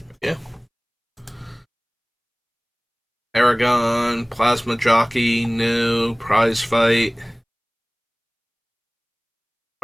Yeah. Aragon, Plasma Jockey, no. Prize Fight.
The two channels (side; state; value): both; identical; correlation 1.00